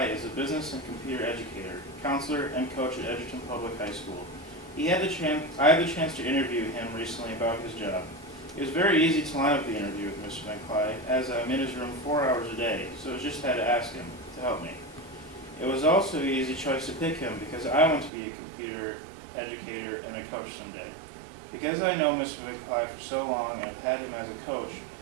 is a business and computer educator, counselor, and coach at Edgerton Public High School. I had the chance to interview him recently about his job. It was very easy to line up the interview with Mr. Van Cly, as I'm in his room 4 hours a day, so I just had to ask him to help me. It was also an easy choice to pick him because I want to be a computer educator and a coach someday. Because I know Mr. Van Cly for so long and have had him as a coach,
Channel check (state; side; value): drops out; left; at 18.1 s